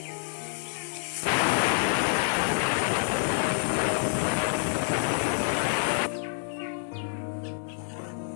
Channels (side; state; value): right; silent; digital silence